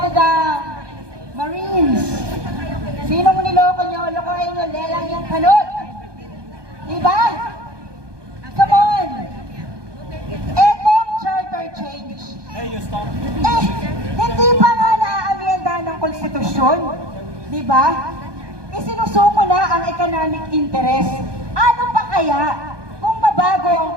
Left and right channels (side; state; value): left; late; 1.2 ms